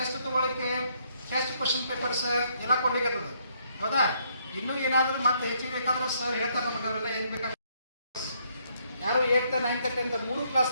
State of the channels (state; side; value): inverted; both; correlation -0.71